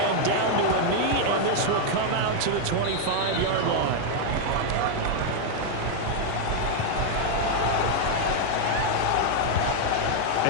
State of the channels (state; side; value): different; both; correlation 0.00